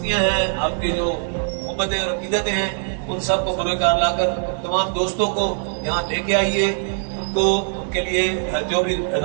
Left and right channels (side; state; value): left; silent; digital silence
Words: हैं, आपकी जो मोहब्बतें और अकीदतें हैं, उन सब को बरोकार लाकर तमाम दोस्तों को यहाँ लेके आइए, उनको के लिए जो भी